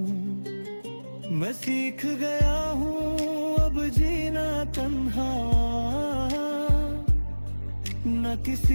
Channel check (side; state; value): both; inverted; correlation -1.00